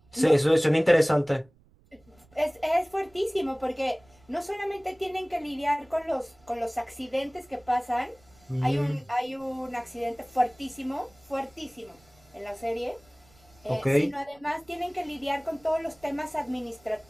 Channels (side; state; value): right; noise; rumble, 30 dB below the sound